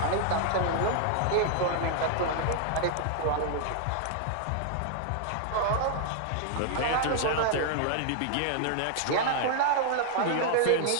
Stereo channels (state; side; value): different; both; correlation 0.00